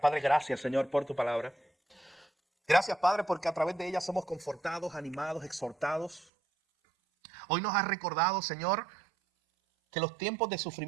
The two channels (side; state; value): left; drops out; at 6.2 s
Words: gracias, Señor, por tu palabra. Gracias, Padre, porque a través de ella somos confortados, animados, exhortados. Hoy nos has recordado, Señor, que los tiempos de